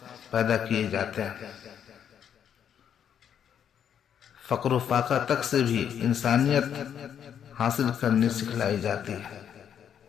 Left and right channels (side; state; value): right; quieter; 8.7 dB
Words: پیدا کیے جاتے ہیں۔ فقر و فاقہ تک سے بھی انسانیت حاصل کرنی سکھلائی جاتی ہے۔